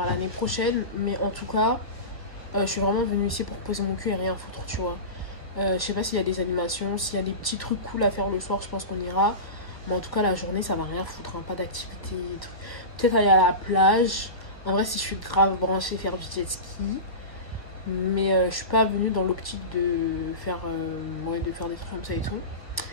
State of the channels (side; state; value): right; late; 1.2 ms